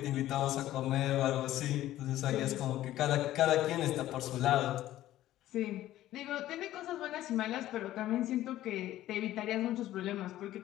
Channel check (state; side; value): quieter; right; 14.1 dB